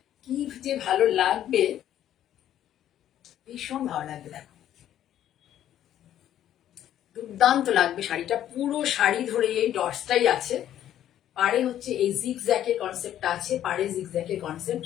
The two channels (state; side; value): quieter; right; 11.4 dB